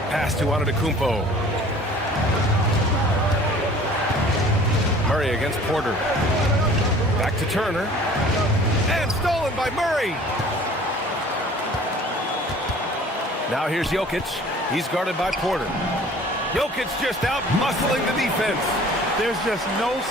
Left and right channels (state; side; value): normal; both; correlation 0.49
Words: Pass to Antetokounmpo. Murray against Porter. Back to Turner. And stolen by Murray. Now here's Jokic. He's guarded by Porter. Jokic just out muscling the defense. There's just no